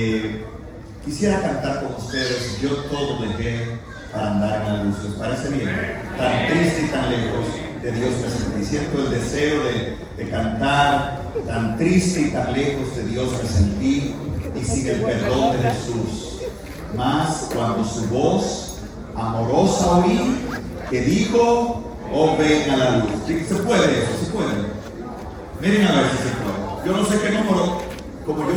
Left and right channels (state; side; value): identical; both; correlation 1.00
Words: quisiera cantar con ustedes Yo todo dejé para andar en la luz. ¿Les parece bien? Tan triste y tan lejos de Dios me sentí. Siento el deseo de cantar. Tan triste y tan lejos de Dios me sentí, y sin el perdón de Jesús. Mas cuando su voz amorosa oí, que dijo: oh, ven a la luz. ¿Sí? ¿Se puede eso? ¿Se puede? Miren a ver si se puede. Yo no sé qué número, como